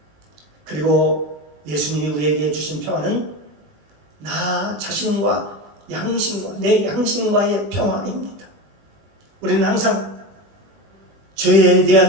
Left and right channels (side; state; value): left; late; 20 ms